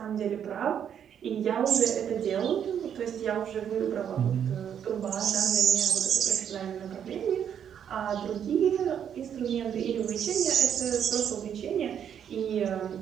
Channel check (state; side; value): quieter; left; 8.7 dB